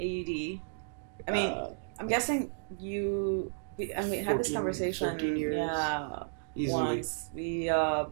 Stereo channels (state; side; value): silent; left; digital silence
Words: I mean, I'm guessing we had this 14, conversation. 13 years. Yeah. Easily. Once. We